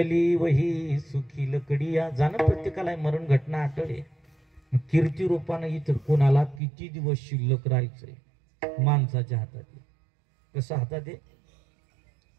वही सुखी लकडिया. जाणं प्रत्येकाला आहे. मरण घटना आठवले. कीर्ती रूपानं इथं कोणाला किती दिवस शिल्लक राहायचंय माणसाच्या हातात आहे. कसं हातात आहे?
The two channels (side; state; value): left; drops out; at 6.6 s